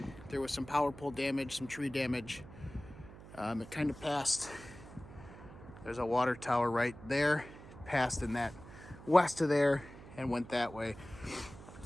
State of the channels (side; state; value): right; noise; hum, 17 dB below the sound